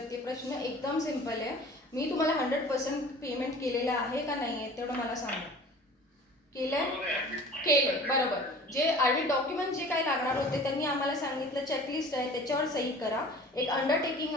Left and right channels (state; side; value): normal; both; correlation 0.44